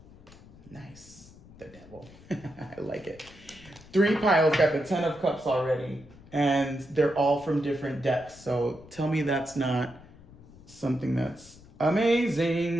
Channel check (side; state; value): left; noise; rumble, 22 dB below the sound